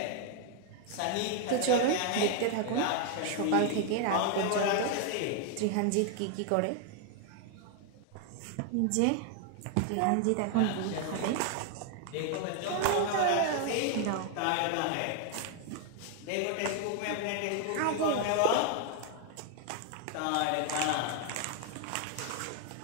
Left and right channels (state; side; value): different; both; correlation 0.00